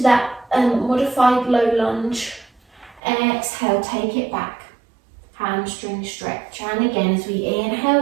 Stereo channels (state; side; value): drops out; left; at 3.0 s